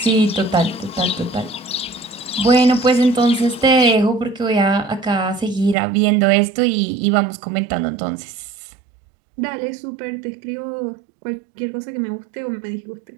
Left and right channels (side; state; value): left; drops out; at 5.8 s